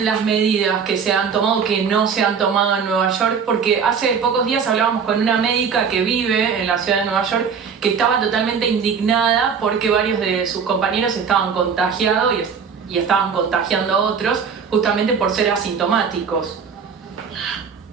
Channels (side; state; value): left; quieter; 6.4 dB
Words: medidas que se han tomado, que no se han tomado en Nueva York? Porque hace pocos días hablábamos con una médica que vive en la ciudad de Nueva York que estaba totalmente indignada porque varios de sus compañeros estaban contagiados y estaban contagiando a otros justamente por ser asintomáticos.